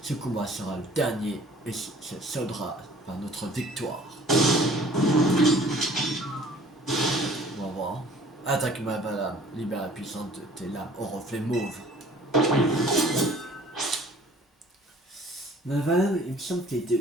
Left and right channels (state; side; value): normal; both; correlation 0.52